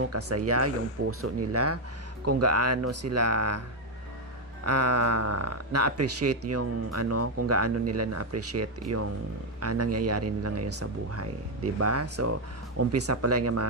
kasaya yung puso nila, kung gaano sila na-appreciate yung kung gaano nila na-appreciate yung nangyayari nila ngayon sa buhay, 'di ba? So umpisa pa lang yung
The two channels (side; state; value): both; normal; correlation 0.04